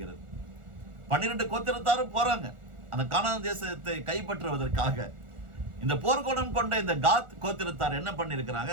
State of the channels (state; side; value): late; left; 1.4 ms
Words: 12 கோத்திரத்தாரும் போறாங்க அந்த கானான் தேசத்தை கைப்பற்றுவதற்காக. இந்த போர்க்குணம் கொண்ட இந்த காத் கோத்திரத்தார் என்ன பண்ணிருக்கிறாங்க,